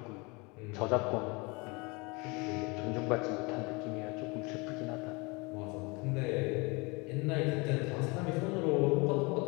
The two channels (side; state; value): right; quieter; 27.6 dB